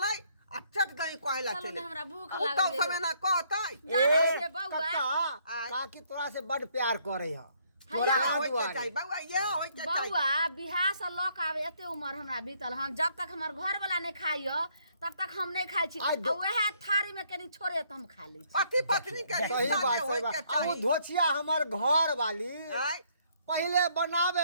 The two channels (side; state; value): both; inverted; correlation -0.67